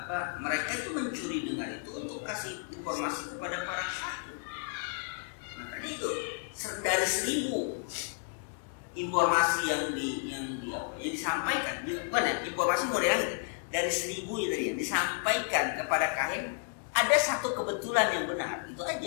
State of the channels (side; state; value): right; silent; 56 dB below the other